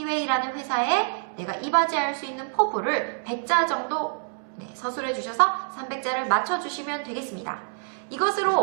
회사에 내가 이바지할 수 있는 포부를 100자 정도 서술해 주셔서 300자를 맞춰주시면 되겠습니다.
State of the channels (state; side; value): silent; left; 61 dB below the other